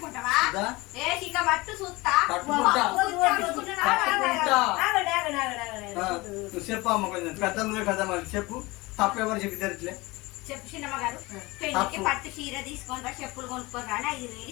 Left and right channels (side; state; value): right; quieter; 22.4 dB